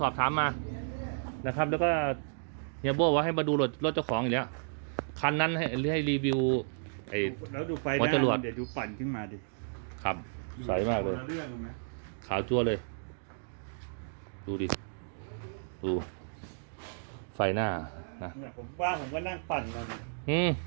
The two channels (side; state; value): left; silent; digital silence